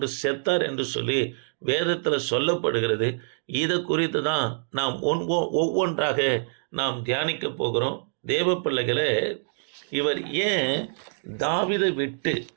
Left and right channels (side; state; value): left; silent; digital silence